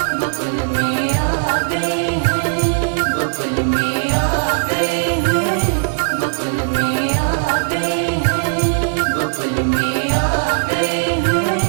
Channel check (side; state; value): left; silent; 65 dB below the other